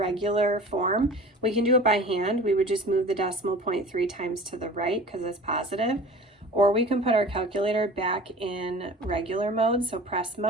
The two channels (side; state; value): both; normal; correlation 0.41